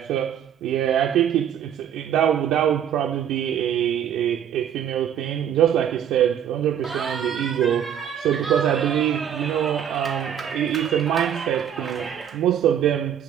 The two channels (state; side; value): quieter; left; 9.3 dB